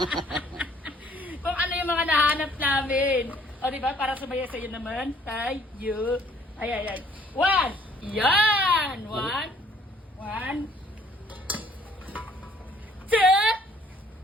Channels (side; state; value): both; normal; correlation 0.61